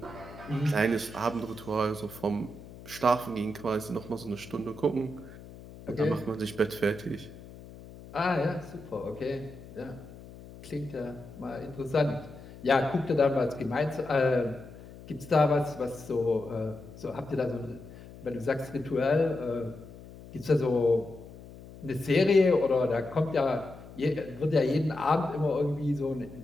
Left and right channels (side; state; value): left; noise; hum, 17 dB below the sound